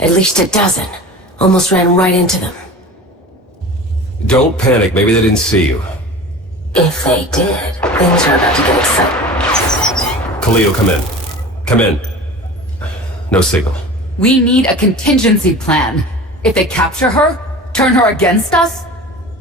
least a dozen. Almost ran right into them. Don't panic, maybe they didn't see you. If they did, things are about to get exciting. Kyllex, come in. Come in. No signal. We need a contingency plan. If they capture her, turn her against us?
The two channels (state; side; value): normal; both; correlation 0.36